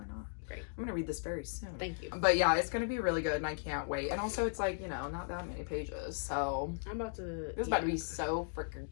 not. Great. I'm gonna read this very soon. Thank you. But yeah, it's gonna be really good, and I can't wait. And also, it's like not that many pages, so I'm about to. this is about to be so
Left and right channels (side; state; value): right; silent; digital silence